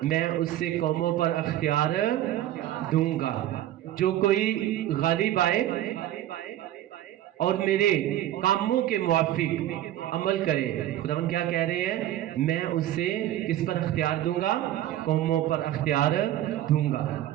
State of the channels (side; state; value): left; quieter; 13.1 dB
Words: मैं उससे कौमों पर अख्तियार दूंगा। जो कोई गालिब आए और मेरे कामों के मुआफिक अमल करे, खुदावन क्या कह रहे हैं, मैं उसे किस पर अख्तियार दूंगा? कौमों पर अख्तियार दूंगा।